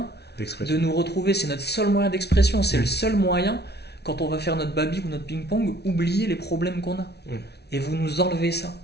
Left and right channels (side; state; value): right; late; 0.49 ms